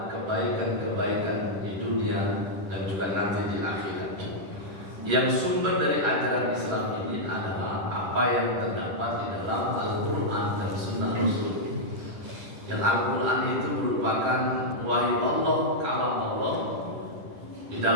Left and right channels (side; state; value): left; late; 10 ms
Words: kebaikan-kebaikan di dunia dan juga nanti di akhirat. Yang sumber dari ajaran Islam ini adalah apa yang terdapat di dalam Al-Quran dan Sunnah Rasul. Yang Al-Quran itu merupakan wahyu Allah, kalam Allah. Di